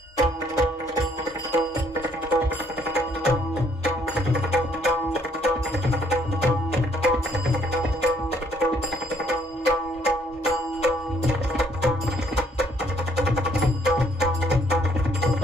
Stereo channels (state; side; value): normal; both; correlation 0.66